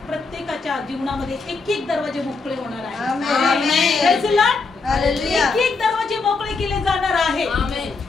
प्रत्येकाच्या जीवनामध्ये एक एक दरवाजे मोकळे होणार आहे. एक एक दरवाजे मोकळे केले जाणार आहे.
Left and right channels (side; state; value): right; quieter; 4.2 dB